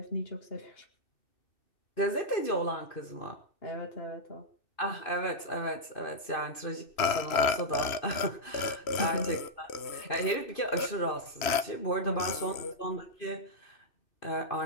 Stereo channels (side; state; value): right; late; 2.6 ms